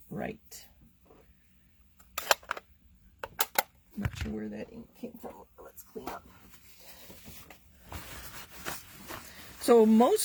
right. I'm not sure where that ink came from. Let's clean up. So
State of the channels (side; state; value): both; identical; correlation 1.00